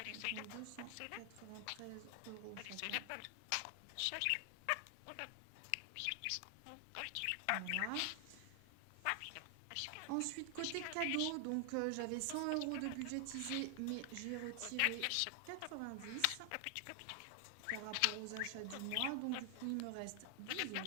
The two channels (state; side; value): different; both; correlation 0.00